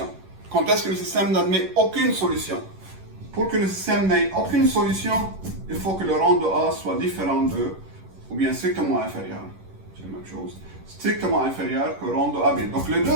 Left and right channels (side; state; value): left; late; 11 ms